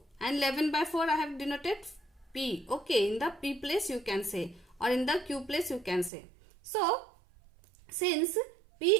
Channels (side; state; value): left; drops out; at 6.1 s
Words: and 11 by 4 I have denoted P. Okay. In the P place you can say, or in the Q place you can say. So since P